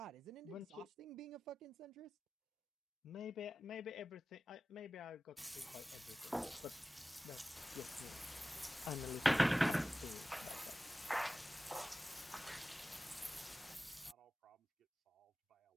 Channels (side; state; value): both; normal; correlation 0.95